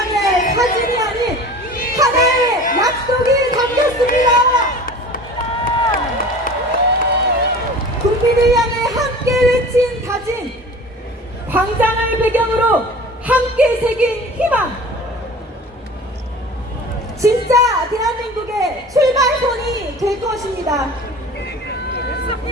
사진이 아닌 하나의 약속이 담겼습니다. 국민을 향해 함께 외친 다짐, 광장을 배경으로 함께 새긴 희망, 진짜 대한민국의 출발선이 될 것입니다.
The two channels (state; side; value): normal; both; correlation 0.41